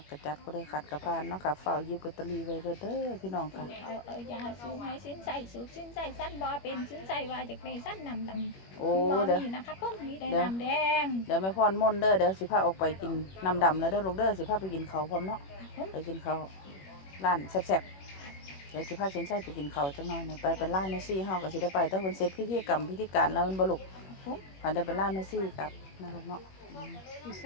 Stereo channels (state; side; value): late; right; 21 ms